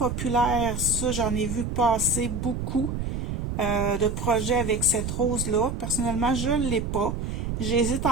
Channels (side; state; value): right; noise; rumble, 3 dB below the sound